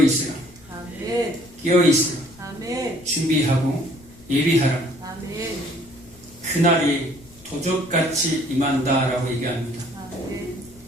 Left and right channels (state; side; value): noise; left; rumble, 24 dB below the sound